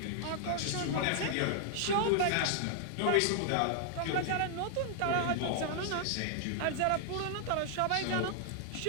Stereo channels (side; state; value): both; different; correlation 0.00